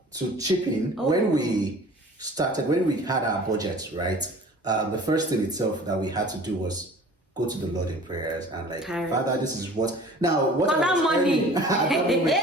to chip in, when we had our budget, right? The first thing itself that we had to do was go to the Lord in prayers and like, Father, this is what I was money.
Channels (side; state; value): both; normal; correlation 0.45